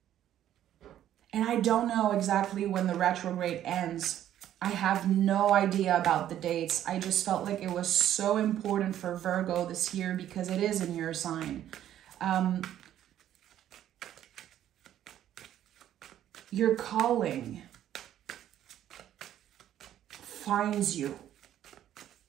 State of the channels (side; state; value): left; quieter; 11.5 dB